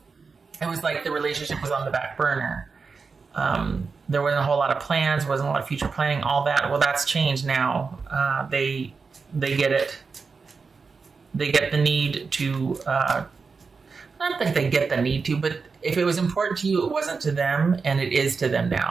was like the relationship was on the back burner. There wasn't a whole lot of plans, wasn't a lot of future planning, all that. Well, that's changed now. They get it. They get the need to, not that they get the need to, but if it was important to you, it wasn't to them, and it is to them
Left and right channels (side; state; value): left; quieter; 4.8 dB